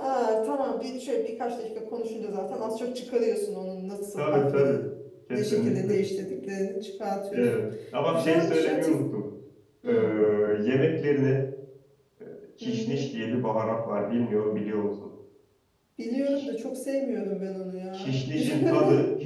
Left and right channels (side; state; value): both; identical; correlation 1.00